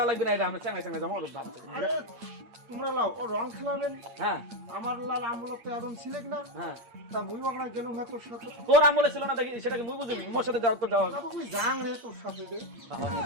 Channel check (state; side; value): late; left; 8.7 ms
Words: লাগবে না এটা আমরা চাঙ্গা চাঙ্গা যাবো ভাব আরে তোমরা লাও ও রং খেলাবেন। হ্যাঁ আমার লাল আমলত তো এখন ছিলেন না, হ্যাঁ তা মুই ওখানে গেলাম হ্যাঁ তোর সাথে। তোর আমলে ছিল না দেখি সেটাকে মুই বুঝিনি মোর সাথে যাও তো যাওয়া বাবু মুই যাং রে তোর সাথে রে। বাবা আমি